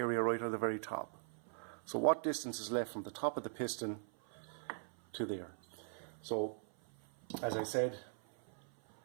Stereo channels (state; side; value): silent; left; 51 dB below the other